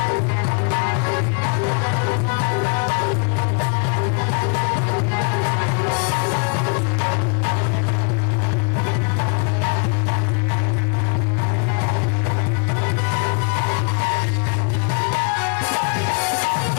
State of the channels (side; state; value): right; quieter; 37.7 dB